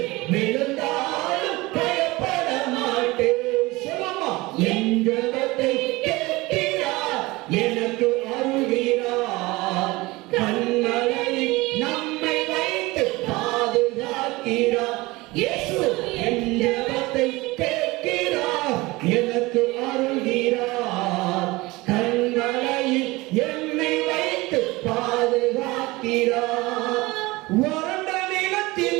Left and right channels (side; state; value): left; quieter; 21.6 dB